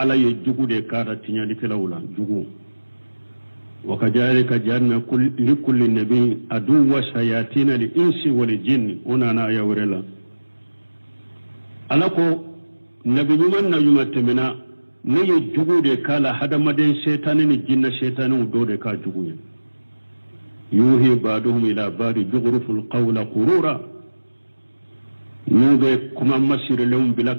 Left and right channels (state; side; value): inverted; both; correlation -1.00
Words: ye jugu de kara tinyali kelawla jugu wa kadhalika janna li kulli nabi aduwa shayatin li insi wal jinn ona na ya wurela ala ko nabi nyuman na yuma temena ne ye jugu de kala hadamaden shaytanin ni jinna shaytanin do de ka jugu ye yuhi ba'duhum ila ba'di jughruful qawla qurura nube kuma masire lewum bila